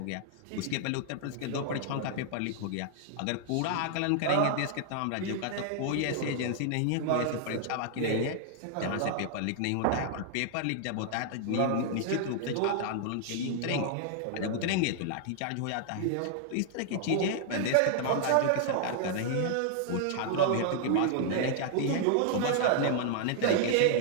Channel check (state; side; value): different; both; correlation -0.01